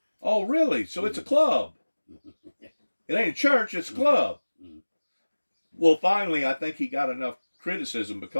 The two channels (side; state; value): both; inverted; correlation -1.00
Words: Oh, really? So it's a club. It ain't a church, it's a club. Well, finally, I think he got enough criticism